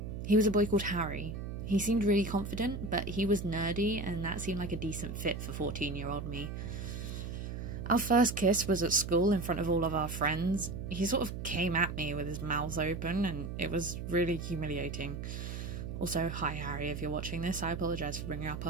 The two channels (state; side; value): noise; right; hum, 6 dB below the sound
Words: He was a boy called Harry. He seemed really confident, but he was nerdy, and that seemed like a decent fit for 14-year-old me. Our first kiss was at school in front of all of our friends. He sort of came at me with his mouth open, and it was really humiliating. Also, hi Harry, if you're watching this, I apologise for bringing up